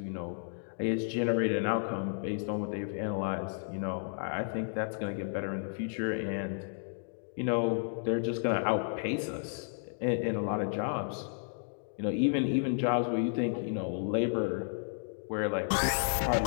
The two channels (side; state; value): right; silent; digital silence